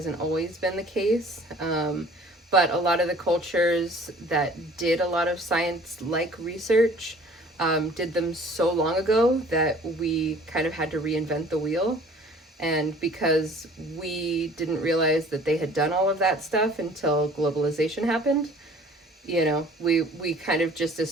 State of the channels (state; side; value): normal; both; correlation 0.51